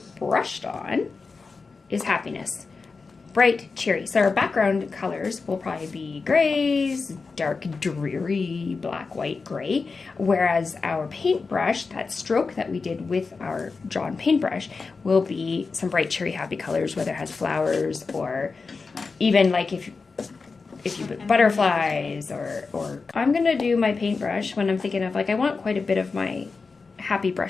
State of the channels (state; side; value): quieter; right; 4.4 dB